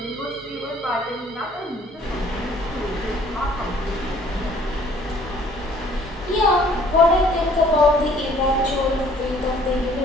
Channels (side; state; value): both; normal; correlation 0.57